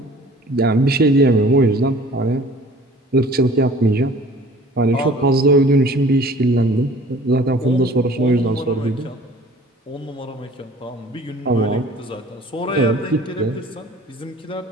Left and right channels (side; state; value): both; normal; correlation 0.49